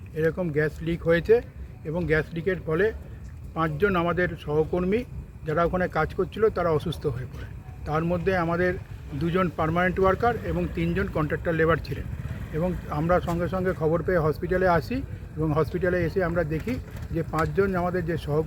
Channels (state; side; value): identical; both; correlation 1.00